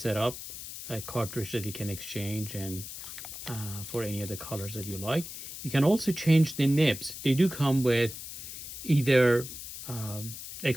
a cartridge that you can exchange, and for any other colors that you like. You can also change the nibs. They do come with either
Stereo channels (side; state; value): left; noise; hiss, 10 dB below the sound